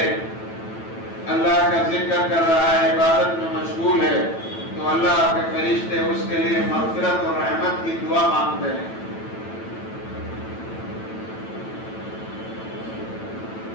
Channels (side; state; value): right; late; 9.1 ms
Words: اللہ کا ذکر کر رہا ہے، عبادت میں مشغول ہے، تو اللہ کے فرشتے اس کے لیے مغفرت اور رحمت کی دعا مانگتے ہیں۔